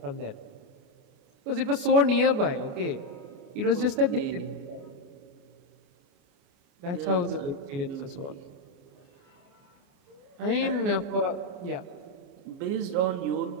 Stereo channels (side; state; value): left; late; 28 ms